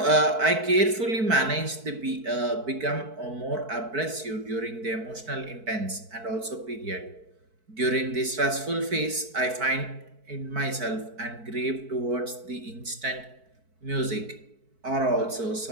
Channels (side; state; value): left; late; 4.6 ms